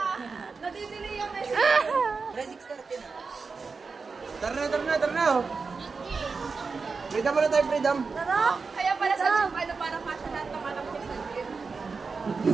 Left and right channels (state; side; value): quieter; left; 4.7 dB